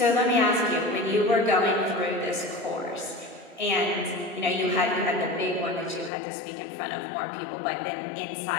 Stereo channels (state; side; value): drops out; right; at 6.1 s